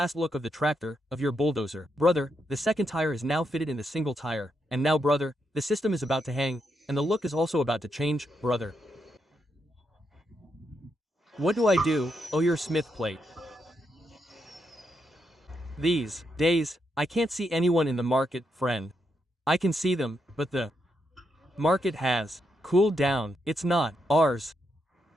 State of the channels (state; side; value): normal; both; correlation 0.81